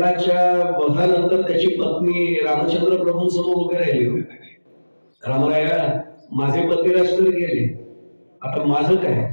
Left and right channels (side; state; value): both; inverted; correlation -1.00